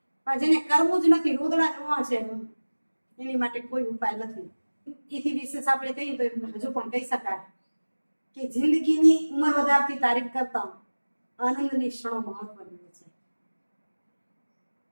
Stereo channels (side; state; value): both; inverted; correlation -1.00